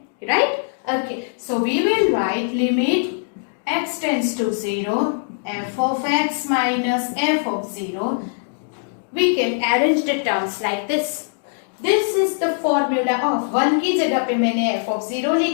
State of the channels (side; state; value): right; silent; digital silence